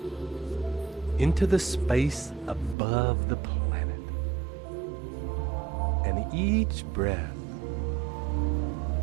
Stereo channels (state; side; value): drops out; left; at 2.8 s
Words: Into the space above the planet. And each breath